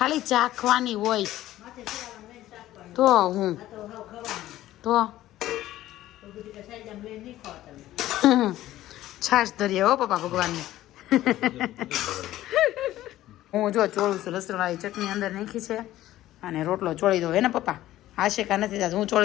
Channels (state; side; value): quieter; right; 14.5 dB